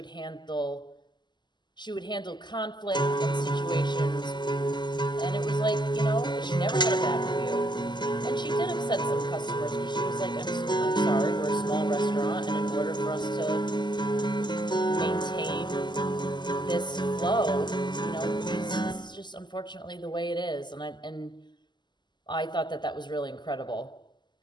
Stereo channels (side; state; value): right; late; 0.21 ms